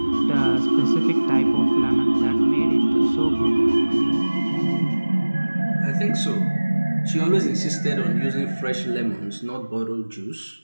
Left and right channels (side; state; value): both; inverted; correlation -1.00